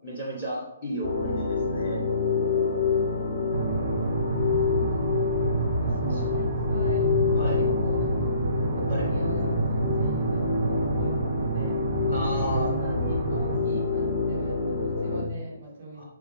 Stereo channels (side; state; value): both; inverted; correlation -0.55